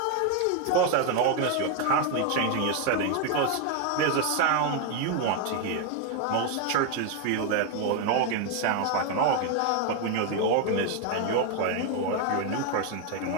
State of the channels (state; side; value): different; both; correlation 0.01